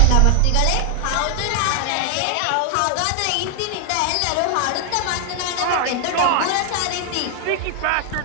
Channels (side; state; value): both; different; correlation 0.00